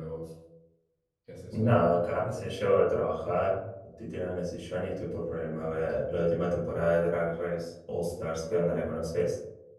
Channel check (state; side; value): identical; both; correlation 1.00